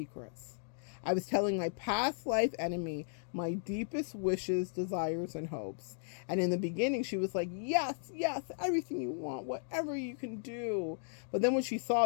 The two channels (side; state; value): right; silent; digital silence